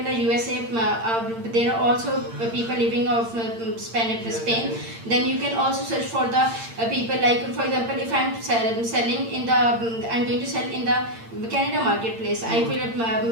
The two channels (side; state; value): left; late; 8.8 ms